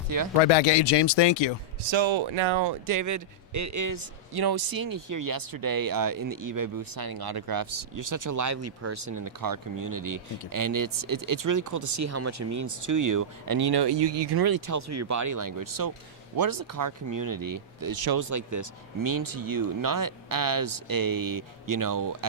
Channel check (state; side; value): normal; both; correlation -0.12